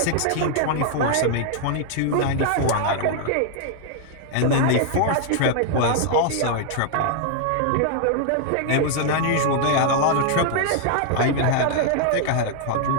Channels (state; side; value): different; both; correlation 0.00